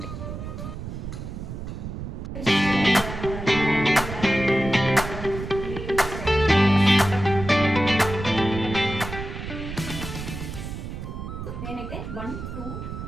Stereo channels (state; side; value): noise; right; rumble, 8 dB below the sound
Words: నేనైతే 1 2